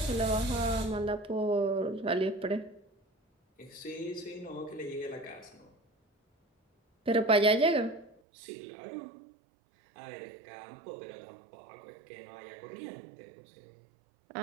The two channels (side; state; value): left; drops out; at 8.2 s